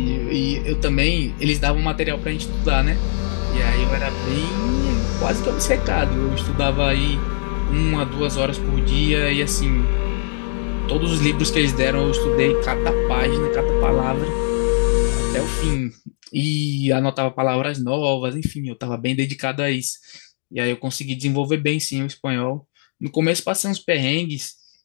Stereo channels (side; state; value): right; silent; digital silence